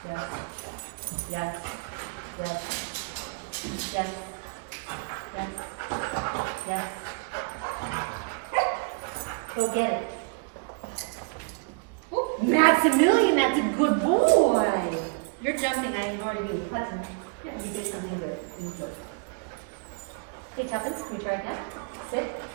Yes. Yes. Yes. Yes. Yes. Yes. Yes. Go get it. Ooh, Maximilian, that's a good boy. You're jumping, I ignore you. Button. You did something good. You good. Okay, Tuppence, can we try again? Sit.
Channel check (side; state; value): left; quieter; 35.3 dB